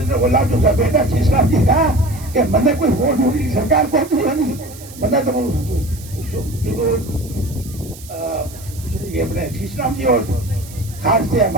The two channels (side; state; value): right; noise; hiss, 18 dB below the sound